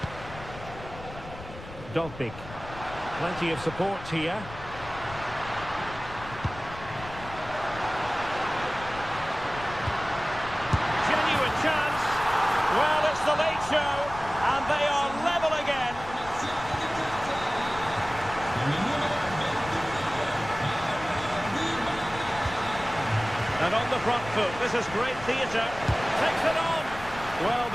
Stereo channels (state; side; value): noise; left; rumble, 14 dB below the sound